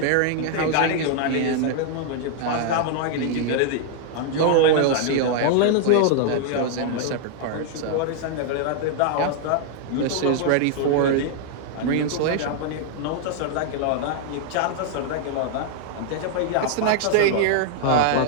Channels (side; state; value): both; different; correlation 0.00